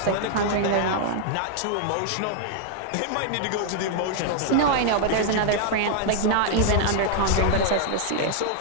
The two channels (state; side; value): different; both; correlation 0.00